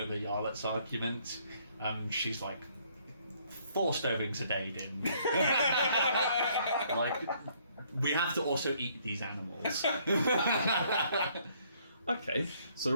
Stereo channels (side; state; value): both; inverted; correlation -0.65